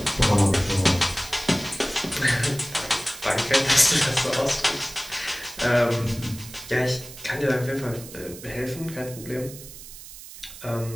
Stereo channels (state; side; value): noise; right; hiss, 15 dB below the sound